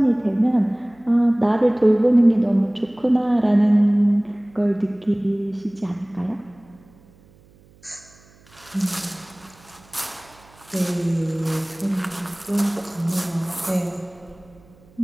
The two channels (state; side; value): noise; right; hum, 28 dB below the sound